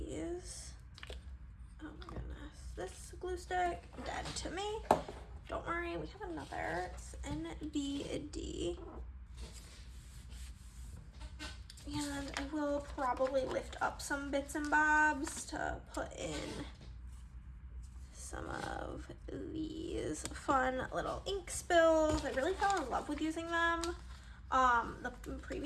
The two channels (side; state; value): both; identical; correlation 1.00